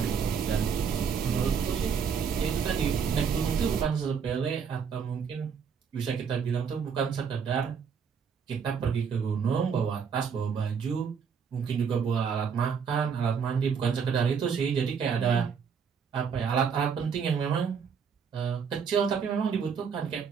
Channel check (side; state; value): left; quieter; 6.6 dB